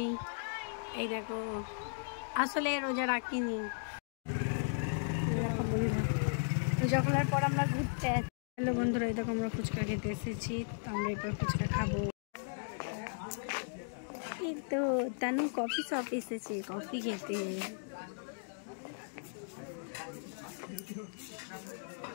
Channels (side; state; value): right; silent; digital silence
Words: এই দেখো, আসলে রোজা রাখিনি। দেখো বন্ধুরা, রোজা খোলার পর আমরা ঘুরতে আসছি। হ্যালো বন্ধুরা, এই দেখো আমরা ফুচকা খেতে এসেছি, তো আমরা এরপর ফুচকা খাবো। এই তো তানু কফি শপ এসেছে কফি খেতে।